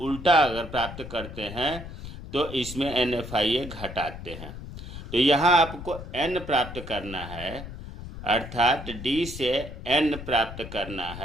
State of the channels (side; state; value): left; noise; rumble, 11 dB below the sound